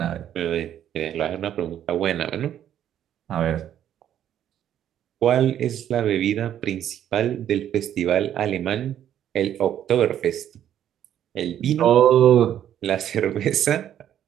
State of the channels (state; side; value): quieter; left; 10.6 dB